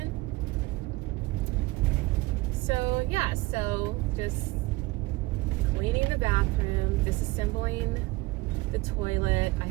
So yeah, so just cleaning the bathroom, disassembling the toilet. I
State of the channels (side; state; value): left; quieter; 21.1 dB